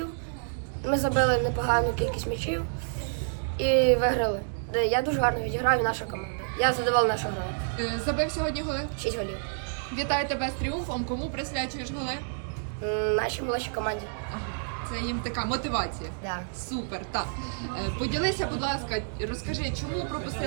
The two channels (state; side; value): silent; left; digital silence